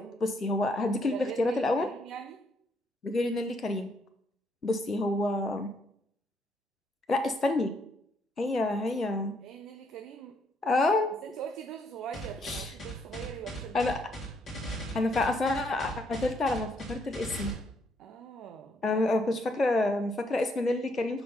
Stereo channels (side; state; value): both; normal; correlation 0.72